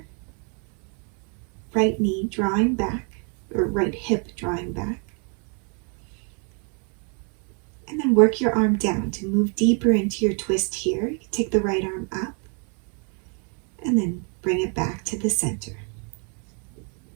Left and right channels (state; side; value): quieter; left; 38.8 dB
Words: right knee drawing back, or right hip drawing back. And then work your arm down to move deeper into your twist here. You can take the right arm up and then bring it back to the center.